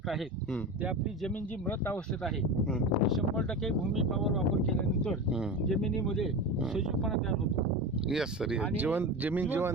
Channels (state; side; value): normal; both; correlation 0.26